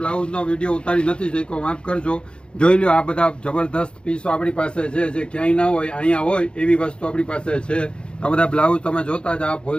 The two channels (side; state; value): right; late; 0.054 ms